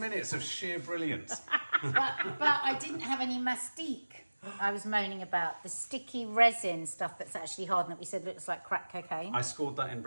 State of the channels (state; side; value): inverted; both; correlation -1.00